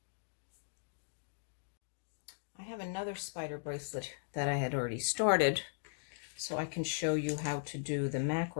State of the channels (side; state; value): right; silent; digital silence